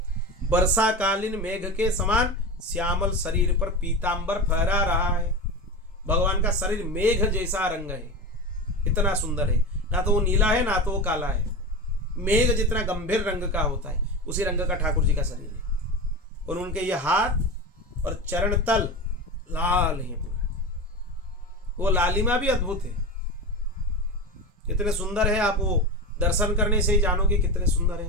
वर्षाकालीन मेघ के समान श्यामल शरीर पर पीतांबर फहरा रहा है। भगवान का शरीर मेघ जैसा रंग है, इतना सुंदर है। ना तो वो नीला है ना तो वो काला है, मेघ जितना गंभीर रंग का होता है उसी रंग का ठाकुर जी का शरीर है। और उनके ये हाथ और चरण तल लाल हैं पूरा, वो लालिमा भी अद्भुत है, कितने सुंदर है। आप वो दर्शन करने से ही जानोगे कितने सुंदर है।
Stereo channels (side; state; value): both; normal; correlation 0.24